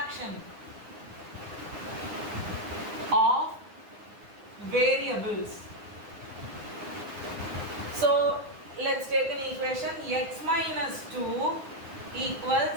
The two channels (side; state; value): left; late; 9.8 ms